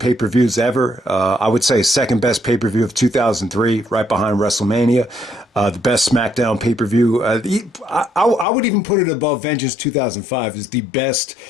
ever. I would say second best pay-per-view of 2003, right behind WrestleMania. The best SmackDown pay-per-view. I would even put it above Vengeance 2005 as the best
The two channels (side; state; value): right; drops out; at 8.5 s